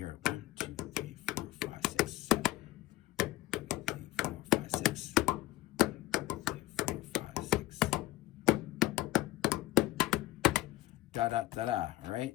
it. 1, 2, 3, 4, 5, 6, 7. 3, 4, 5, 6. 3, 4, 5, 6. Da da da da. All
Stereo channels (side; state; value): right; quieter; 17.3 dB